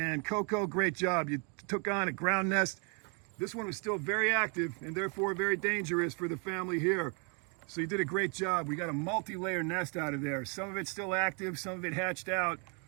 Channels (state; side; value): quieter; left; 36.5 dB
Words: Coco, great job. You took on a ground nest. This one was still very active and therefore very dangerous for the family here. So you did a great job. We got a multi-layer nest out of there. Some of it's still active, some of it hatched out.